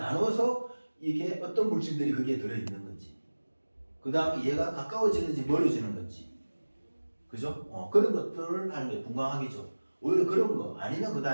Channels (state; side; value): inverted; both; correlation -1.00